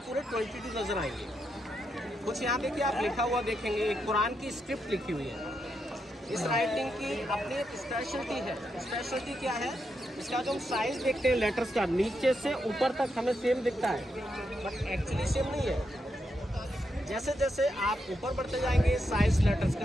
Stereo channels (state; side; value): normal; both; correlation 0.83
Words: 22 नजर आएंगे। कुछ यहाँ देखिए आप लिखा हुआ देखेंगे, एक कुरान की स्क्रिप्ट लिखी हुई है। इस राइटिंग की अपनी एक स्पेशलिटी है। स्पेशलिटी क्या है, इसका जो हम साइज देखते हैं लेटर्स का, नीचे से ऊपर तक हमें सेम दिखता है, बट एक्चुअली सेम नहीं है। जैसे जैसे आप ऊपर बढ़ते जाएंगे साइज लेटर्स